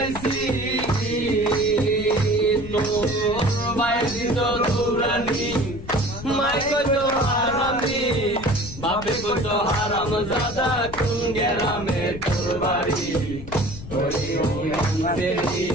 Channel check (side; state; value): left; noise; rumble, 13 dB below the sound